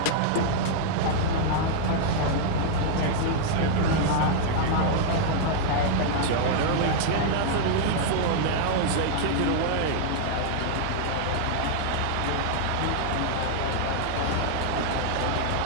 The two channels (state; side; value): different; both; correlation -0.01